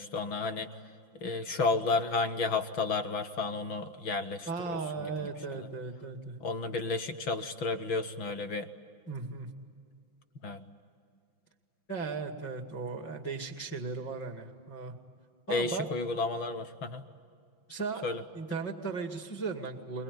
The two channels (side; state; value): right; late; 6.4 ms